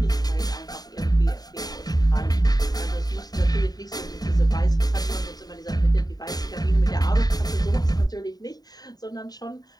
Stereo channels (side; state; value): right; late; 0.19 ms